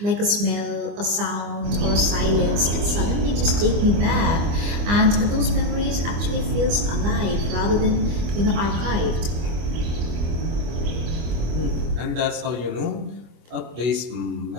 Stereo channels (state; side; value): late; left; 25 ms